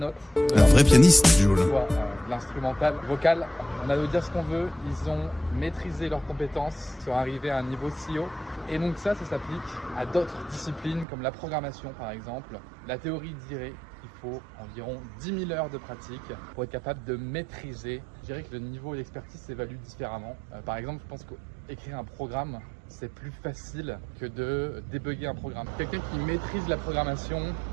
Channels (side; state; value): left; drops out; at 11.1 s